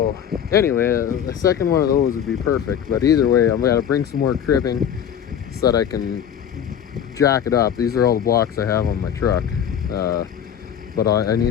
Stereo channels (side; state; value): right; quieter; 8.9 dB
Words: anyway, a second one of those would be perfect. But either way, I'm gonna bring some more cribbing so that I can jack it up. These are all the blocks I have on my truck, but I